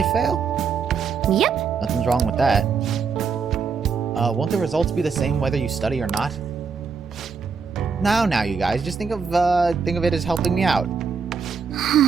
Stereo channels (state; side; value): quieter; left; 5.6 dB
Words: fail? Yep. Nothing's wrong with that. Won't the results be the same whether you study or not? Now, you guys, just think of it as helping me out.